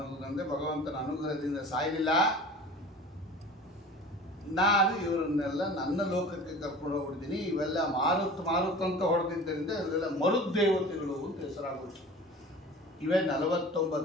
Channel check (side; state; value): both; normal; correlation 0.40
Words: ಭಗವಂತನ ಅನುಗ್ರಹದಿಂದ ಸಾಯಲಿಲ್ಲ. ನಾನು ಇವರನ್ನೆಲ್ಲ ನನ್ನ ಲೋಕಕ್ಕೆ ಕರ್ಕೊಂಡು ಹೋಗ್ಬಿಡ್ತೀನಿ. ಇವೆಲ್ಲ ಮಾರುತ್ ಮಾರುತ್ ಅಂತ ಹೊಡೆದಿದ್ದರಿಂದ ಇವರೆಲ್ಲ ಮರುದ್ದೇವತೆಗಳು ಅಂತ ಹೆಸರಾಗುತ್ತೆ. ಇವೇ